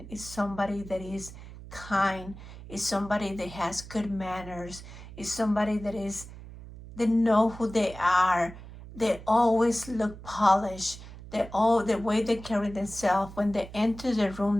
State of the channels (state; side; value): noise; right; hum, 15 dB below the sound